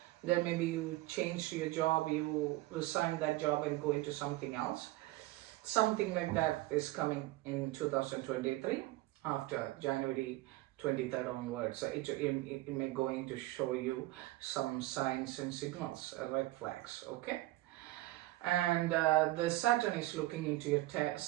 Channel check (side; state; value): left; quieter; 18.1 dB